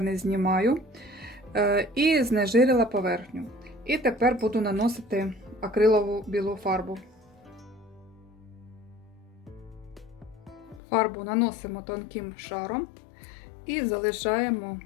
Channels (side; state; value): right; drops out; at 10.8 s